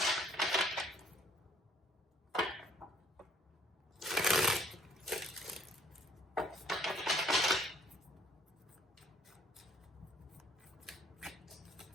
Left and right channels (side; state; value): both; normal; correlation 0.62